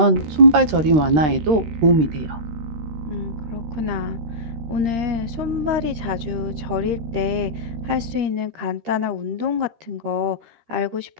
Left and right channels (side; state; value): left; late; 13 ms